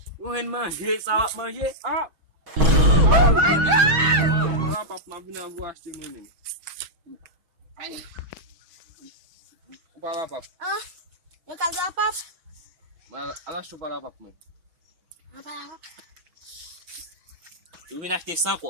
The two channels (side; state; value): left; late; 6.2 ms